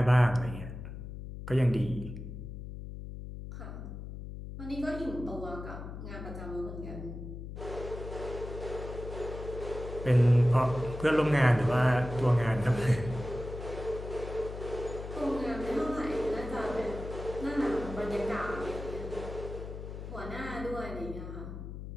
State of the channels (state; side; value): noise; left; hum, 9 dB below the sound